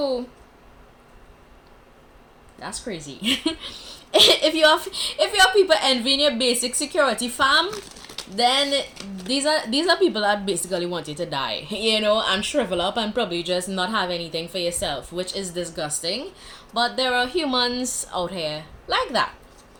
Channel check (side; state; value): both; identical; correlation 1.00